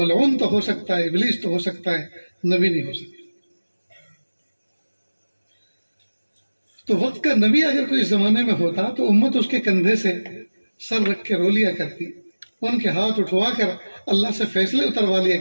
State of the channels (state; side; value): inverted; both; correlation -1.00